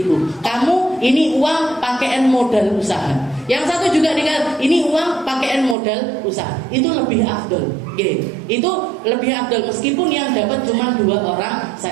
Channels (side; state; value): left; drops out; at 5.8 s